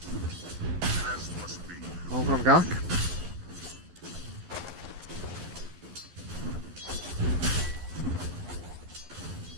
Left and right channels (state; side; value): late; left; 11 ms